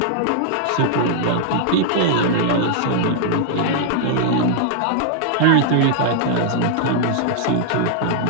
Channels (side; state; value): both; different; correlation -0.01